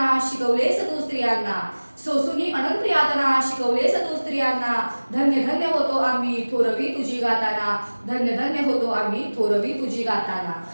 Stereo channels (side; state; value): both; inverted; correlation -1.00